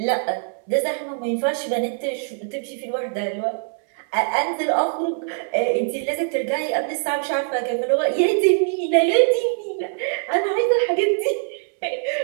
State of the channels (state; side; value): silent; left; 64 dB below the other